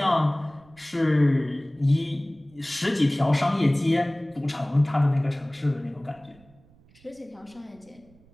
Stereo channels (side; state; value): right; noise; rumble, 29 dB below the sound